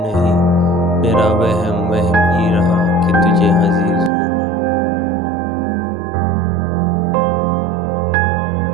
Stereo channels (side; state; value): left; drops out; at 4.1 s